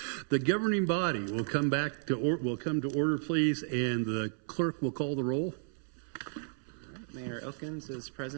The governing body will come to order, please, and the clerk will call the roll. Mayor Elkins is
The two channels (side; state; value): left; silent; 56 dB below the other